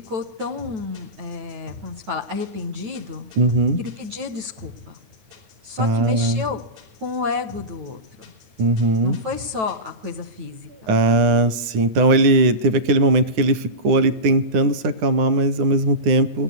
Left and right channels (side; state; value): left; late; 9.8 ms